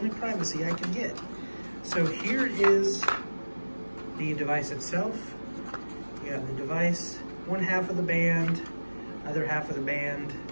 privacy I can get. So here is the device itself. You got the device, one half of the band, other half of the band.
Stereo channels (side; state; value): both; inverted; correlation -1.00